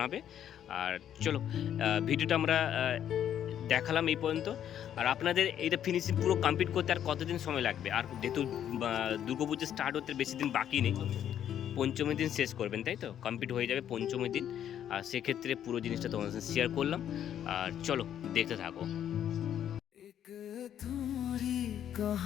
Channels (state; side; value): quieter; right; 10.1 dB